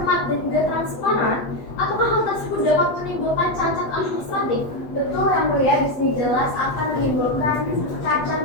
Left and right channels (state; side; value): late; right; 8.1 ms